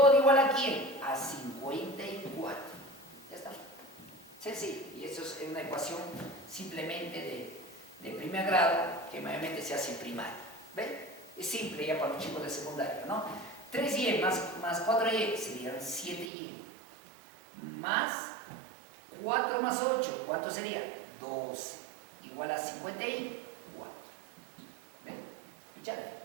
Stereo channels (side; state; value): left; drops out; at 16.3 s